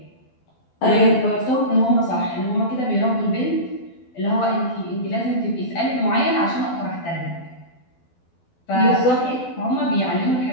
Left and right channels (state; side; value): late; right; 12 ms